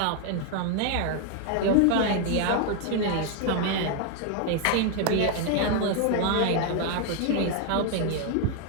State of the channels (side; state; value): both; different; correlation 0.01